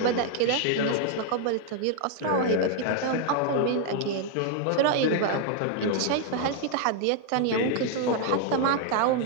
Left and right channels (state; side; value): different; both; correlation 0.00